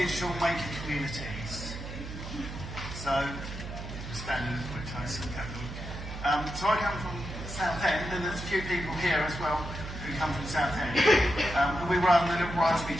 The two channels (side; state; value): right; noise; hum, 9 dB below the sound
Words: maker communities. So, standing quite close and so I come from Southend, and there's a few people here as well who come from Southend. And we run the little Raspberry